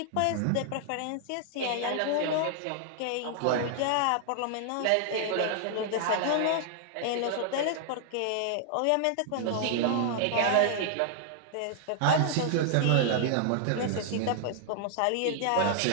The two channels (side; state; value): both; different; correlation -0.01